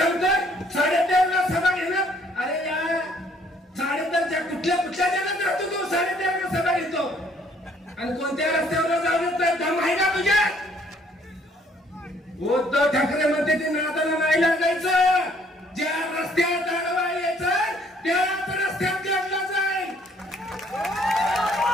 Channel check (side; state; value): both; normal; correlation 0.63